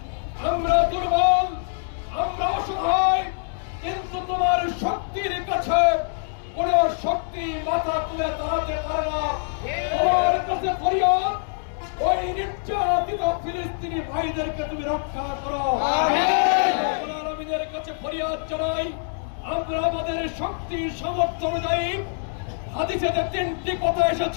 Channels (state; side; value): silent; right; 62 dB below the other